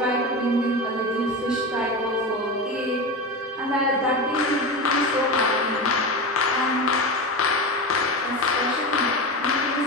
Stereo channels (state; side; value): normal; both; correlation 0.23